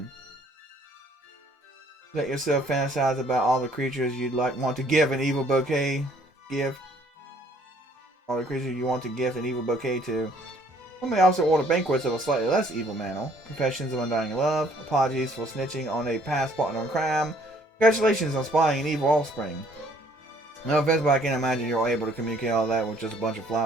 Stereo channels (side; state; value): both; normal; correlation 0.61